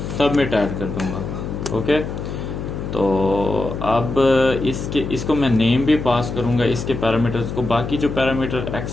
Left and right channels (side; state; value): left; noise; hum, 6 dB below the sound